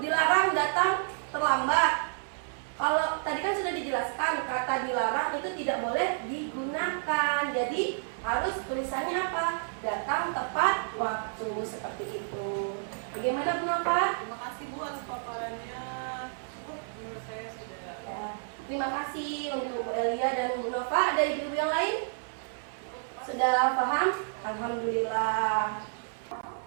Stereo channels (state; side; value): silent; left; 58 dB below the other